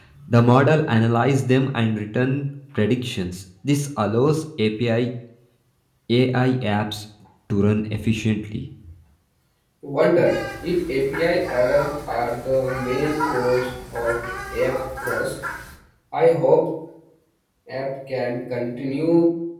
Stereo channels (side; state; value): both; identical; correlation 1.00